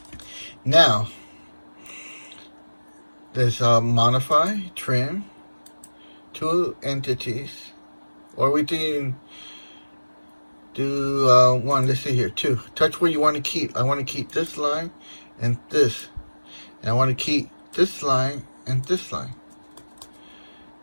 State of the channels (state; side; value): inverted; both; correlation -1.00